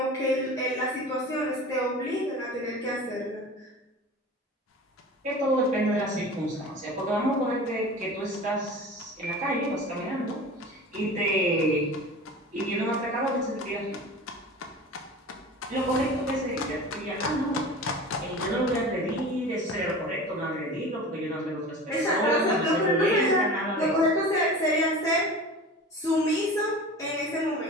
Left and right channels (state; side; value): normal; both; correlation 0.36